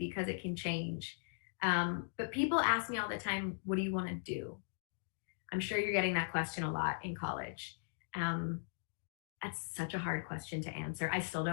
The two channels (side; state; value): right; silent; digital silence